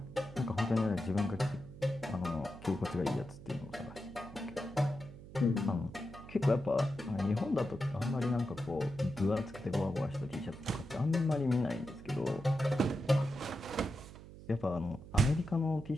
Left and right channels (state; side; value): noise; right; hum, 16 dB below the sound